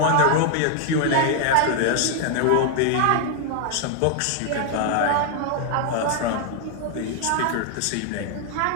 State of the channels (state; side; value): different; both; correlation 0.00